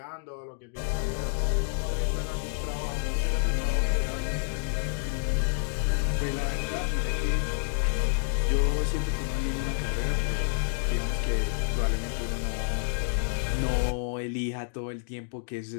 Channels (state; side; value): silent; right; digital silence